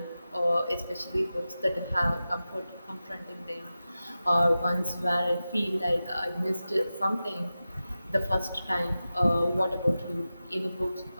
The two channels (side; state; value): both; inverted; correlation -0.94